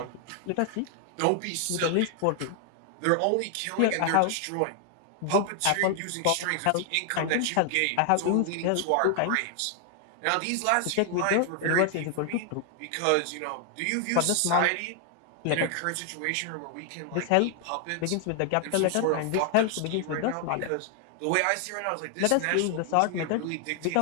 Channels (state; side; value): different; both; correlation 0.00